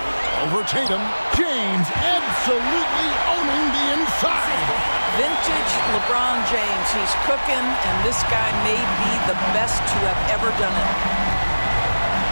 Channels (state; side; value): inverted; both; correlation -1.00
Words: Over Tatum. James absolutely owning the inside. Vintage LeBron James. He's cooking, and this guy may be the best to have ever done it.